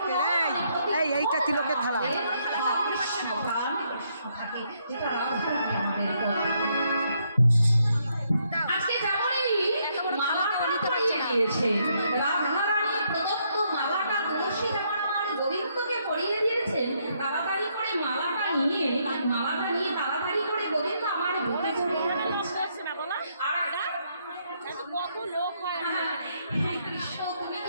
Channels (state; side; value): inverted; both; correlation -0.74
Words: এইটা তিলকের থালা। আজকে যেমনই মালাটা পরিয়ে দিয়েছে, রাধারানী প্রদত্ত মালাটা তুলসী যেমন আমার গোবিন্দকে পরিয়ে দিয়েছেন, তাড়াতাড়ি করে মালাটা নিয়ে তাড়াতাড়ি করে গোবিন্দ আমার বুকে জড়িয়ে রেখেছে। আর কত লোক হয়, হে কৃষ্ণ তুমি